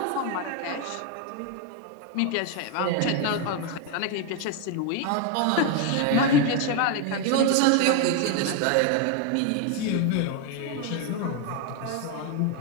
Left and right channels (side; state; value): both; different; correlation 0.01